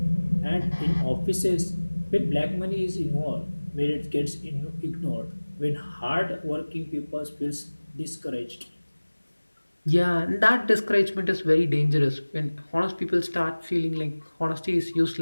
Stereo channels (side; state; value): both; inverted; correlation -1.00